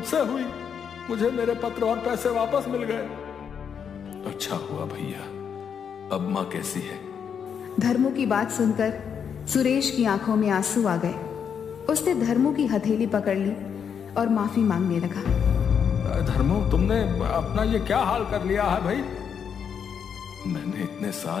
हुई। मुझे मेरे पत्र और पैसे वापस मिल गए। अच्छा हुआ भैया। अब माँ कैसी है? धर्मू की बात सुनकर सुरेश की आंखों में आंसू आ गए। उसने धर्मू की हथेली पकड़ ली और माफी मांगने लगा। धर्मू, तुमने अपना ये क्या हाल कर लिया है भाई? मैंने इतने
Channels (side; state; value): right; quieter; 7.4 dB